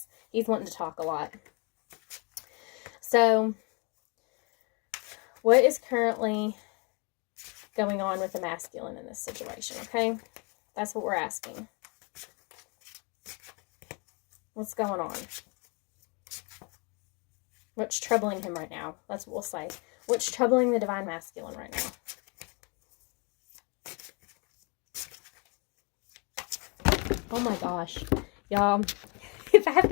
he's wanting to talk a lot. So, what is currently going on with the masculine in this situation, okay? That's what we're asking. What's going on? What's troubling him right now? That's what we'll say. What's troubling the divine masculine right now? Oh my gosh. Y'all, if I have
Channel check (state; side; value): quieter; right; 32.5 dB